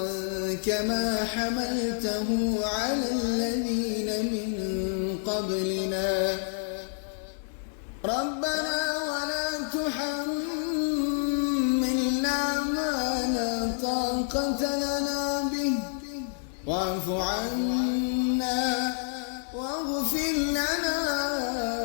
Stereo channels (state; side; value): silent; right; digital silence